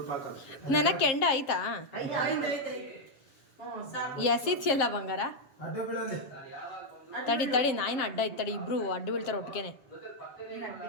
ಹಾಕ. ನನ್ನ ಕೆಂಡ ಆಯ್ತಾ? ಎಸಿತಿಯಲ್ಲ ಬಂಗಾರ. ಅಡ್ಡ ಬೀಳಲಿ. ತಡಿ ತಡಿ, ನಾಯಿನ ಅಡ್ಡ ಐತೆ ತಡಿ, ಇಬ್ರು ಅಡ್ಡ ಬೀಳ್ತಾರೆ ಒಟ್ಟಿಗೆನೆ.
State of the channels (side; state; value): right; late; 7.5 ms